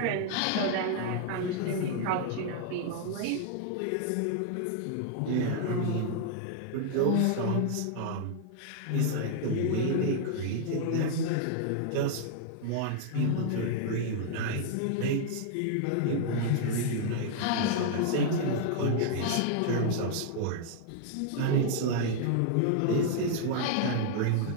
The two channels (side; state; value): both; different; correlation 0.00